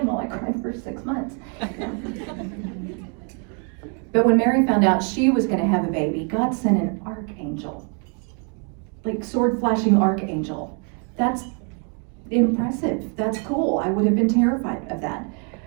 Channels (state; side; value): quieter; left; 39.5 dB